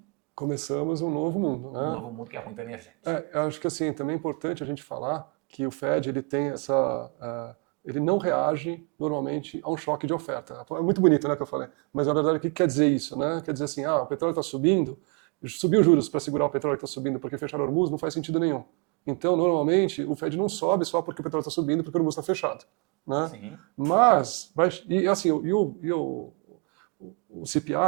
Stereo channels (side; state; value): left; quieter; 34.7 dB